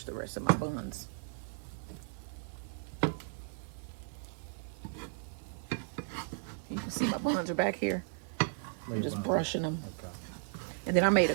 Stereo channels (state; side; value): silent; left; 54 dB below the other